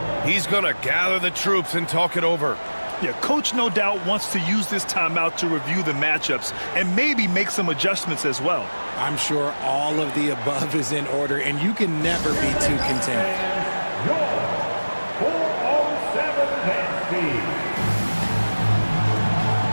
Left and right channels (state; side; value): inverted; both; correlation -1.00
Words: He's going to gather the troops and talk it over. Yeah, coach no doubt wants to use this timeout to review the matchups and maybe make some adjustments as well. I'm sure all of the above is in order, and you can never be too content. Your 407 Nancy.